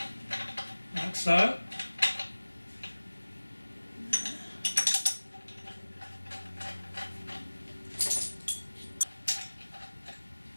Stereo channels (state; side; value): inverted; both; correlation -1.00